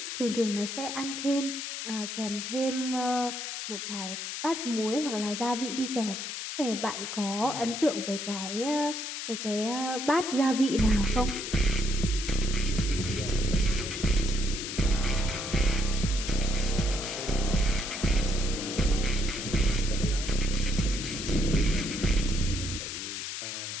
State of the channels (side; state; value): left; noise; hiss, 5 dB below the sound